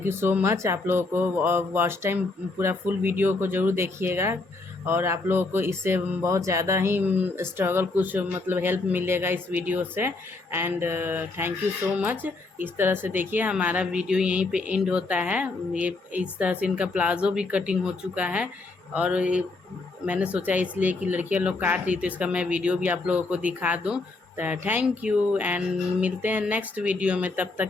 you so much. आप लोगों को वॉच टाइम पूरा फुल वीडियो को ज़रूर देखिएगा और आप लोगों को इससे बहुत ज़्यादा ही स्ट्रगल कुछ मतलब हेल्प मिलेगा इस वीडियो से। And thank you so much. इस तरह से देखिए हमारा वीडियो यहीं पे एंड होता है। ये इस तरह से इनका प्लाजो भी कटिंग हो चुका है और मैंने सोचा इसलिए कि लड़कियां लोग काट रही तो इसका मैं वीडियो भी आप लोगों को दिखा दूँ। थैंक यू एंड मिलते हैं नेक्स्ट वीडियो में। तब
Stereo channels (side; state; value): right; quieter; 3.4 dB